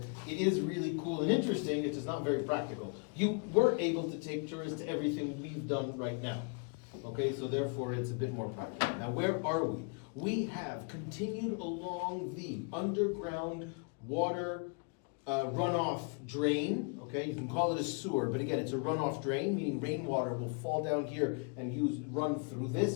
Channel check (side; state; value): right; quieter; 35.7 dB